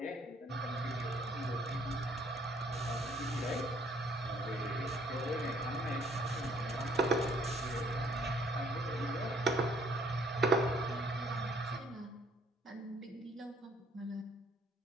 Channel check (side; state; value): both; normal; correlation 0.62